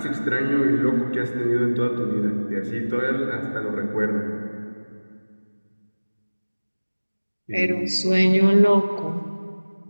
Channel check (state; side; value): inverted; both; correlation -1.00